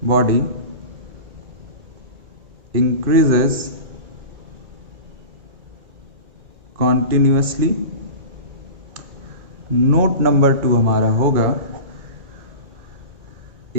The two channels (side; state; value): left; late; 2.3 ms